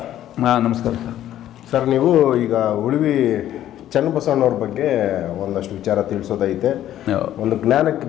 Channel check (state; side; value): quieter; right; 12.2 dB